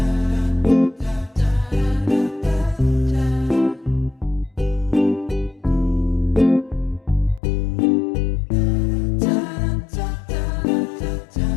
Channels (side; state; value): right; drops out; at 7.4 s